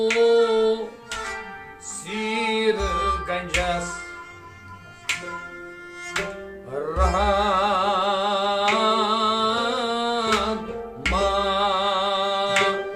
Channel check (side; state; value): both; identical; correlation 1.00